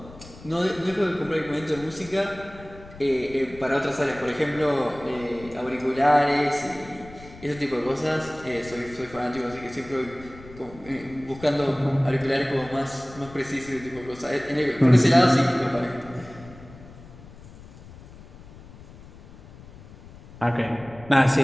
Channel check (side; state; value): left; noise; rumble, 19 dB below the sound